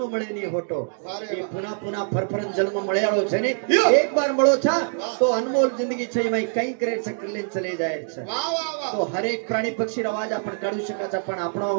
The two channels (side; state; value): left; silent; digital silence